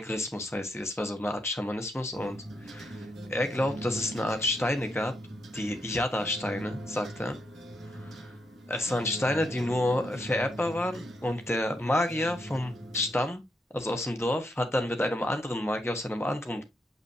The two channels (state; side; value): normal; both; correlation 0.80